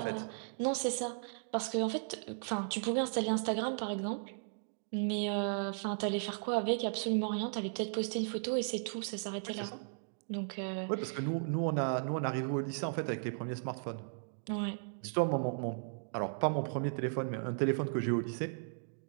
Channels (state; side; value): silent; left; digital silence